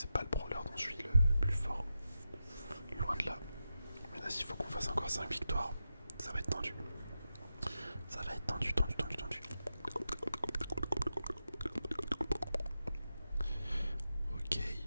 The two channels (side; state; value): both; inverted; correlation -0.90